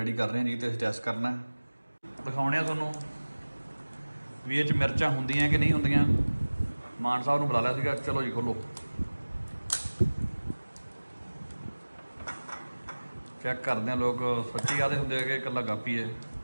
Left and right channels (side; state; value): both; inverted; correlation -1.00